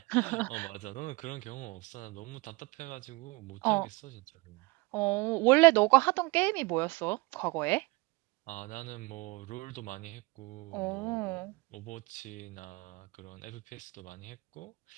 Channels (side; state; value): left; quieter; 24.9 dB